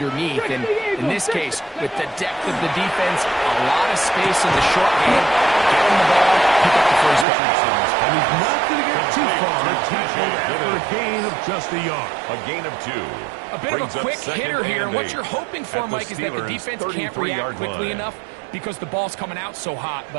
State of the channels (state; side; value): drops out; left; at 7.2 s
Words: And in this case, with the depth of the defense, a lot of space in the short game, get him the ball, pick up the first down. And he's not going to get too far. Tackled after a gain of just a yard. A gain of 2. A bit of a Brings up quick second hitter here, and and what 8 you're hoping for, at the Mike, is that the Steelers' defense can't 33-yard react quickly line. enough because the ball's coming out so hot,